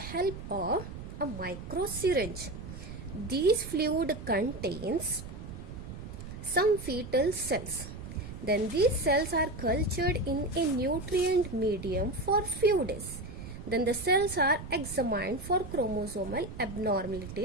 of a micro syringe. This fluid contains some fetal cells. Then these cells are cultured in a nutrient medium for few days. Then the cells are examined for chromosomal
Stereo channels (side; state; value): right; noise; rumble, 10 dB below the sound